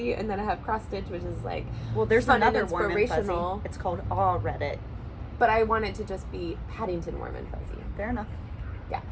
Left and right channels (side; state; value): both; identical; correlation 1.00